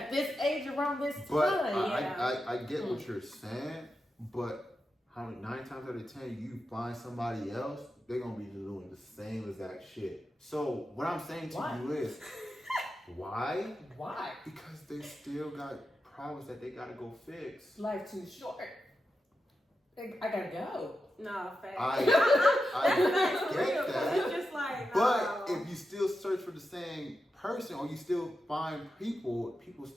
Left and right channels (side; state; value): both; normal; correlation 0.89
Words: this age around this time, but I get what you're saying, but 9 times out of 10 you find somebody else, they're gonna be doing the same exact shit. So what I'm saying to you is why? Why? Because they still got problems that they gotta go fix. Life too short. I gotta go. No, facts. I get that. It's just like, but if you still search for the same person or you still find people